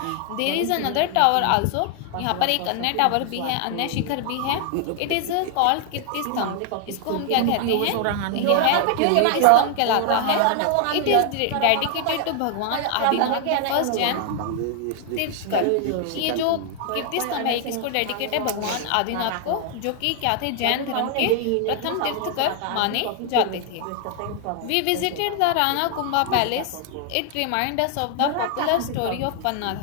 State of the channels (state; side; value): different; both; correlation 0.00